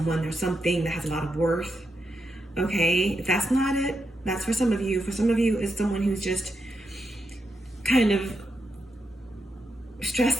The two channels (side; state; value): both; normal; correlation 0.85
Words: there's something that has a lot of worth. Okay, if that's not it, that's for some of you. For some of you, it's someone who's just kind of